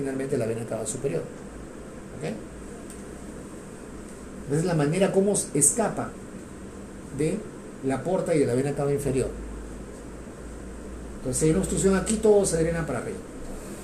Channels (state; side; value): identical; both; correlation 1.00